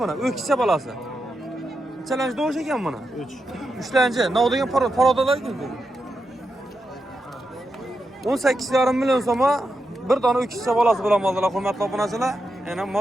Ökçe balası. Challenge doğuş ekan bana. 3. 3'lence. Ne oldu parodalar gibi. 18,5 milyon soma bir tane ökçe balası bilan aldılar hurmatli obunachilar. Yani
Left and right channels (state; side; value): normal; both; correlation 0.86